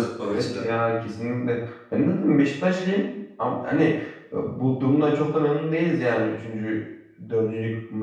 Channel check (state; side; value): identical; both; correlation 1.00